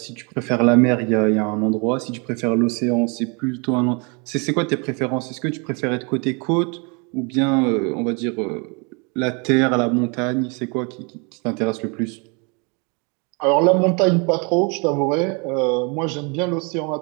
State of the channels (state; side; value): quieter; left; 32.6 dB